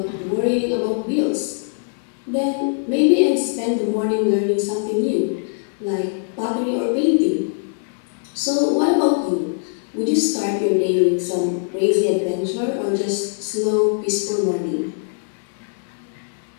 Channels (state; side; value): silent; right; digital silence